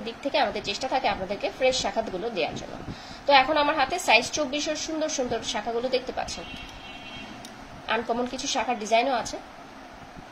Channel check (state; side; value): identical; both; correlation 1.00